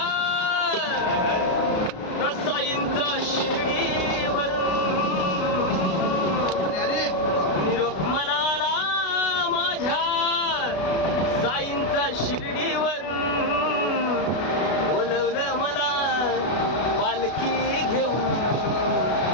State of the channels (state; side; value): late; right; 33 ms